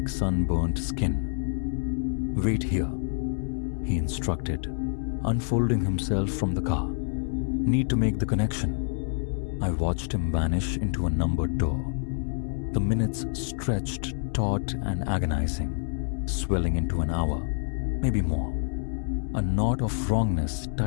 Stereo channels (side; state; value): right; silent; 60 dB below the other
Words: sunburnt skin. "Wait here," he instructed, unfolding himself from the car. "Need to make the connection." I watched him vanish into a numbered door. The minutes stretched taut and agonizing, swelling into an hour, maybe more. A knot of wrongness